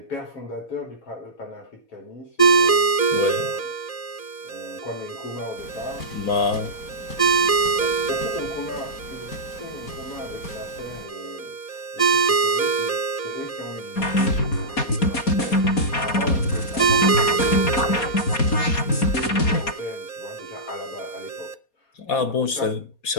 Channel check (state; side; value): late; right; 4.2 ms